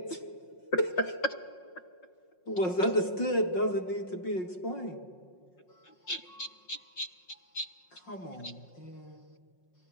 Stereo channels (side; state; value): right; late; 5.5 ms